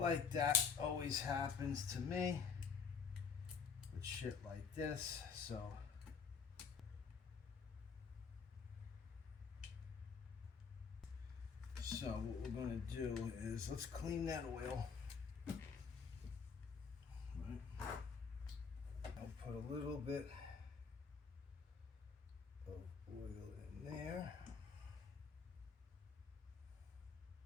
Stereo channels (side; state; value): right; quieter; 5.7 dB